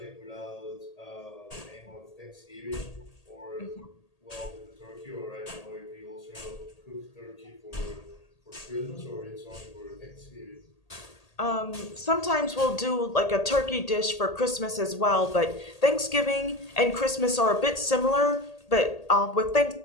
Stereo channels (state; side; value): late; right; 1.8 ms